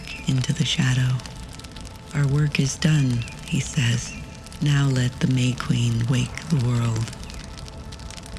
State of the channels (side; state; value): both; identical; correlation 1.00